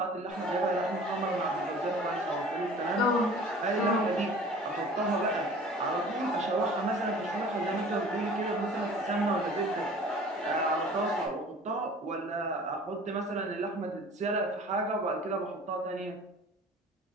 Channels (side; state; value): both; normal; correlation 0.45